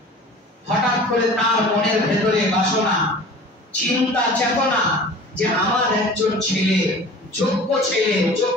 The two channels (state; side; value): normal; both; correlation 0.42